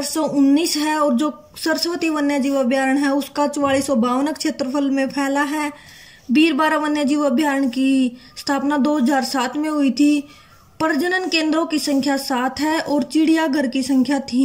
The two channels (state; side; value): identical; both; correlation 1.00